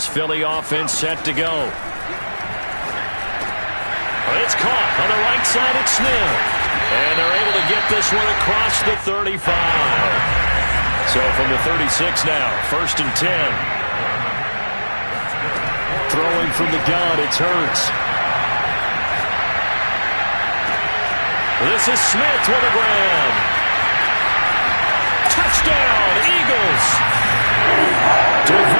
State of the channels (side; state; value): both; inverted; correlation -1.00